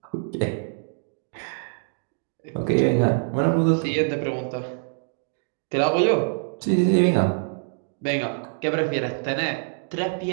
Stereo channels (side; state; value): left; silent; digital silence